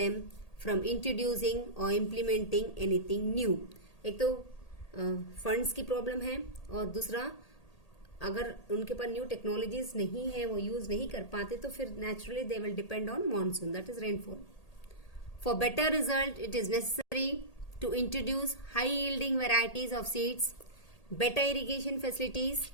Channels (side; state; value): right; late; 1.8 ms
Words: from introducing or implementing anything new. एक तो फंड्स की problem है, और दूसरा अगर उनके पास न्यू टेक्नोलॉजीज नहीं है, वो यूज नहीं कर पाते, तो फिर naturally they will depend on monsoon, that is rainfall. For better result it is necessary to introduce high yielding varieties of seeds, better irrigation facilities,